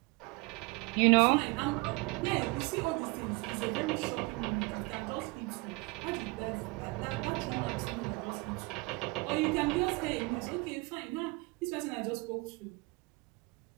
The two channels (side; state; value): left; quieter; 26.4 dB